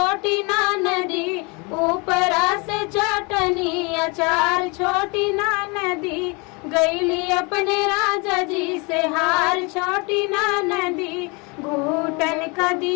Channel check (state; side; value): quieter; right; 29.5 dB